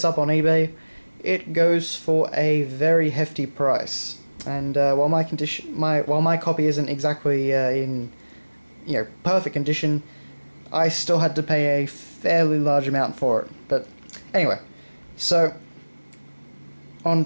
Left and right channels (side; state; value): both; inverted; correlation -1.00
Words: up on eBay, it goes for a very hefty price. And while my copy isn't exactly in perfect condition, I still had to pay a fairly large amount for it. But anyway, so on